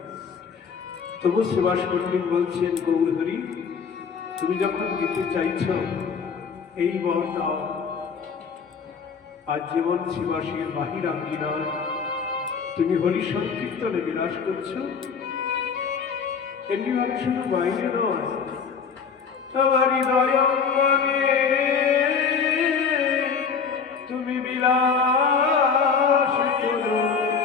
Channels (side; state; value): right; quieter; 6.0 dB